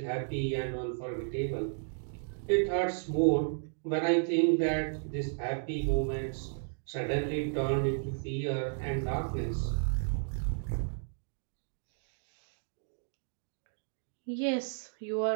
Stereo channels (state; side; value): silent; left; digital silence